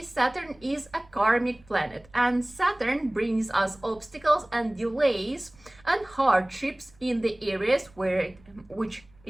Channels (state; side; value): noise; right; rumble, 27 dB below the sound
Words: Saturn is a karmic planet, and Saturn brings us obstacles and delays and hardships in the areas which